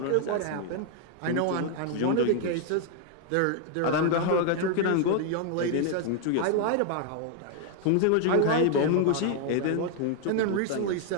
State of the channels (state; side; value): different; both; correlation 0.00